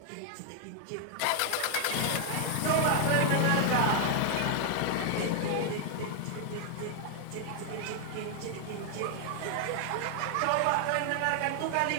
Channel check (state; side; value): different; both; correlation 0.00